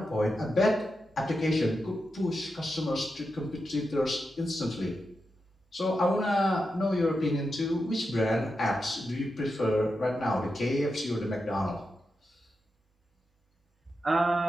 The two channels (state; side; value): normal; both; correlation 0.88